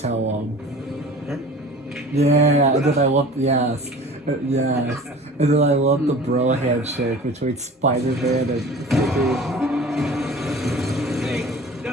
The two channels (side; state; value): both; normal; correlation 0.41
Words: him. Huh? Yeah, and then I love, yes. Yes. And then I love the bro handshake between Spider-Man and freaking... Hey,